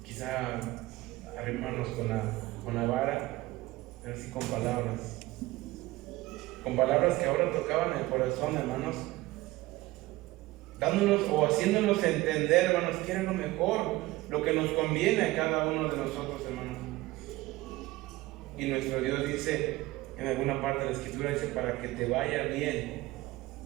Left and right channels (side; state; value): left; quieter; 19.1 dB